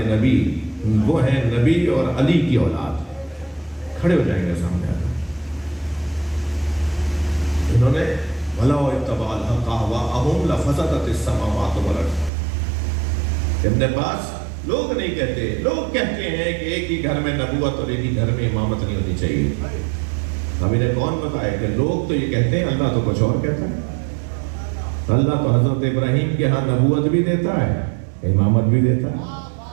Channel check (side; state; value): left; drops out; at 12.3 s